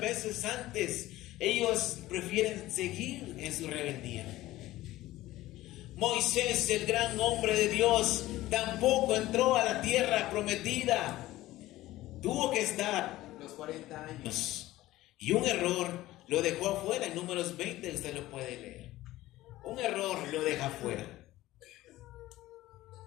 antes. Ellos prefieren seguir en su rebeldía. Moisés, el gran hombre de Dios, tampoco entró a la tierra prometida. Tuvo que estar los 40 años. Y un error lo dejó afuera. En Números 20 usted lo puede leer. Un error lo deja afuera.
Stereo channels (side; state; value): right; quieter; 16.5 dB